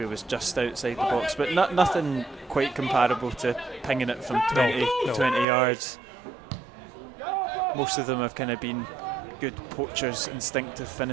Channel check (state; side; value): drops out; left; at 5.5 s